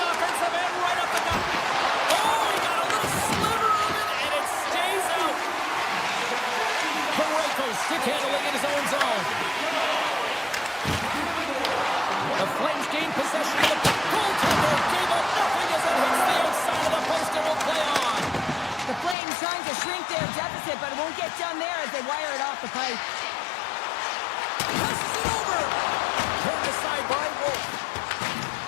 offensive end, right up the gut. Oh, he got a little sliver of it, and it stays out. Parayko stick handling in his own zone. The Flames gain possession of the puck. Goaltender gave up nothing as it hits the outside of the post and will play on. The Flames trying to shrink their deficit, but it won't get done there as they wire it off the pipe. Passes it over. Turned aside by Wolf.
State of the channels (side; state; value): right; drops out; at 19.2 s